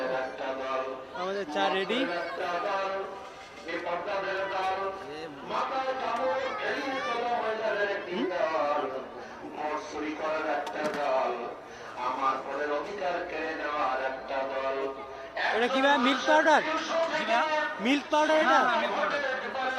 আমাদের চা রেডি। এটা কি ভাই, মিল্ক পাউডার? মিল্ক পাউডার, এটা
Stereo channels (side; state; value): both; identical; correlation 1.00